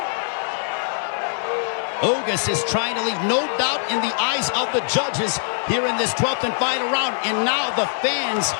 Ugas is trying to leave no doubt in the eyes of the judges here in this 12th and final round. And now the fans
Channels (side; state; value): right; silent; digital silence